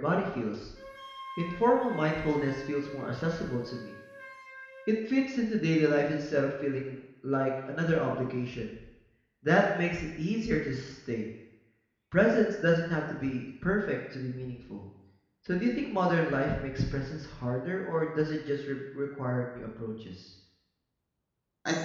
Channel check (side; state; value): both; identical; correlation 1.00